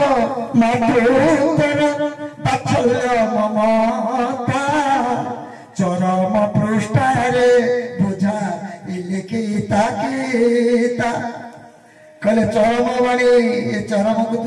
मातृतर बात्सल्य ममता चरम पृष्ठारे बुझा इलिखिता गीता कहले चरम बाणी ये चरम को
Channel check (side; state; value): both; identical; correlation 1.00